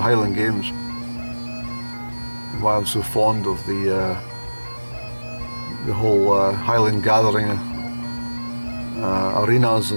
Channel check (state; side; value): inverted; both; correlation -1.00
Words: Highland Games. Why I'm so fond of the whole Highland gathering arenas